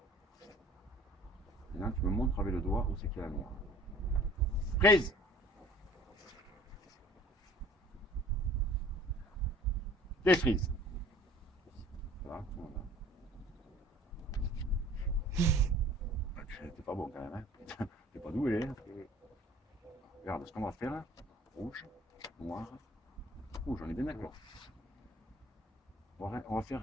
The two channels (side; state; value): both; normal; correlation 0.50